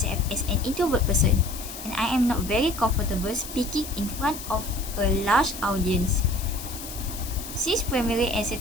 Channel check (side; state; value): left; noise; hiss, 11 dB below the sound